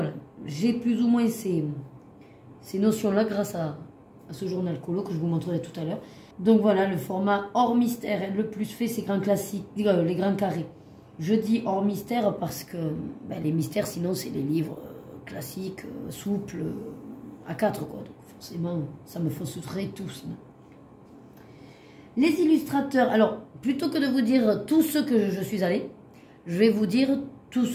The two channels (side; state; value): both; identical; correlation 1.00